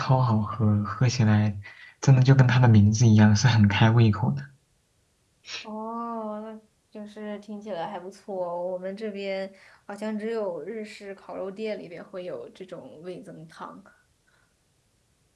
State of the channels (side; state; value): both; identical; correlation 1.00